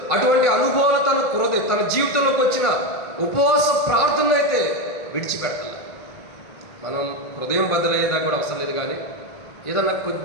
అటువంటి అనుభవాలు తన జీవితంలోకి వచ్చిన ఉపవాస ప్రార్థనలు అయితే విడిచిపెట్టాలి. మనం హృదయం బద్దలయ్యేదాకా కూడా అవసరం లేదు, కానీ ఏదన్నా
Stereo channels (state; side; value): late; right; 1.5 ms